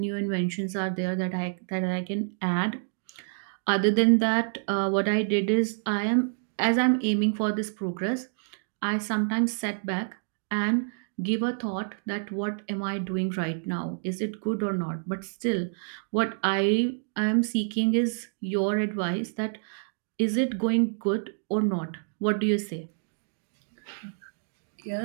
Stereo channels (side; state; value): left; silent; digital silence